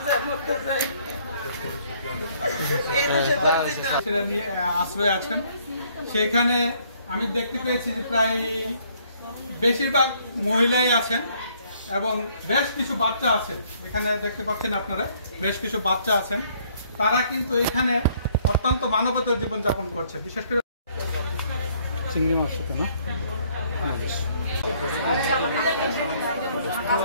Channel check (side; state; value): both; inverted; correlation -0.64